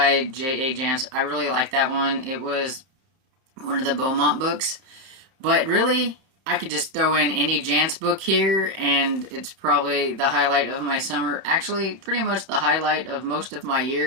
J.A. Jance. I really like that one. It was one of the Beaumont books, but really, I could just throw in any Jance book here, and it's probably the highlight of my summer. Actually, pretty much the highlight of most of my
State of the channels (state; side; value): late; left; 30 ms